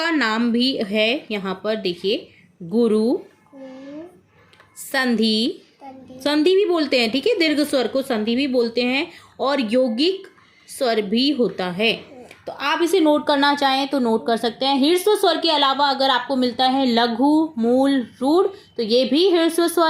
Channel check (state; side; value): identical; both; correlation 1.00